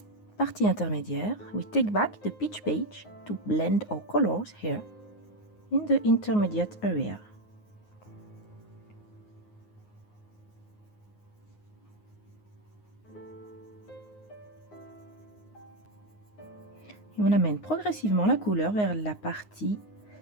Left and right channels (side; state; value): right; late; 9.6 ms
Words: partie intermédiaire, we take back the pitch beige to blend our colors here in the intermediate area. Et on amène progressivement la couleur vers la partie